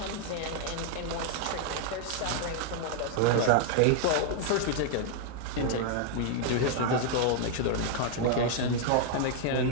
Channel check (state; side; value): different; both; correlation 0.00